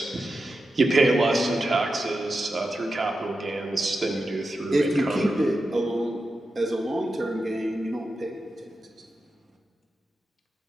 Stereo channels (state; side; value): normal; both; correlation 0.90